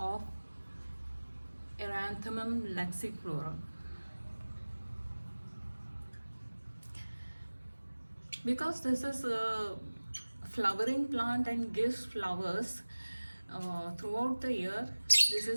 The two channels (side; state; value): both; inverted; correlation -1.00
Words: Erranthmum laxiflorum. Because this is a flowering plant and gives flowers throughout the year, this